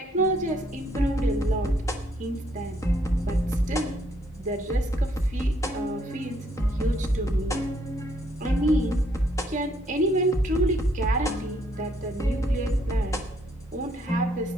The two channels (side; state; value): both; normal; correlation 0.69